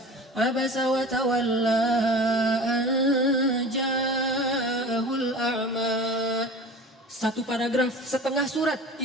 Abasa wa tawalla ja'ahul a'ma. Satu paragraf, setengah surat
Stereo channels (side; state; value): both; normal; correlation 0.38